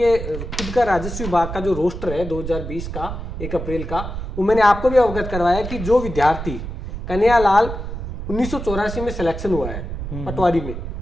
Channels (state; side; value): noise; right; rumble, 7 dB below the sound